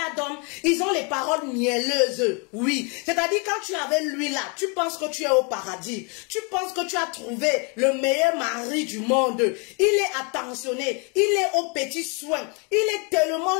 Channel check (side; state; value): right; quieter; 33.9 dB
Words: d'hommes, ils ont les paroles mielleuses, oui. C'est-à-dire quand tu es avec lui là, tu penses que tu es au paradis. Tu penses que tu as trouvé le meilleur mari du monde. Il est attentionné, il est aux petits soins. Il est tellement